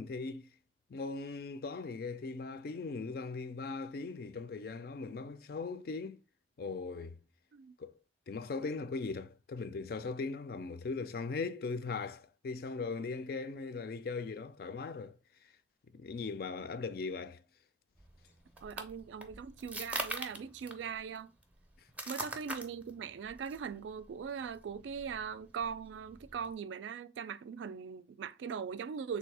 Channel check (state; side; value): normal; both; correlation 0.19